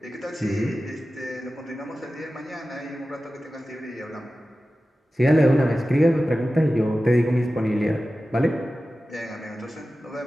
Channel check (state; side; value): normal; both; correlation 0.95